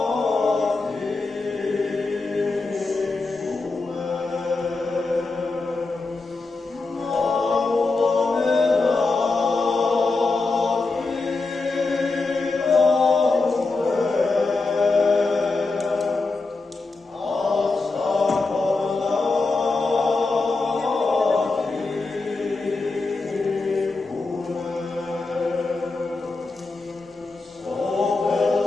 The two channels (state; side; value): quieter; right; 3.7 dB